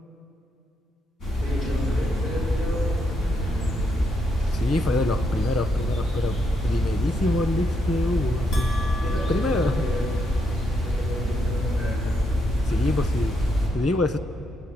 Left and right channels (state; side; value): normal; both; correlation 0.79